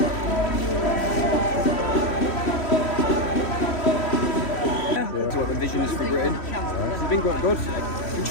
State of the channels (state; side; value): late; right; 3.1 ms